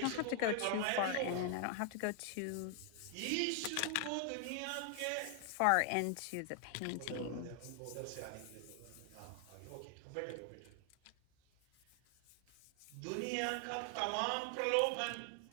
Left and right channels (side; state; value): both; different; correlation 0.00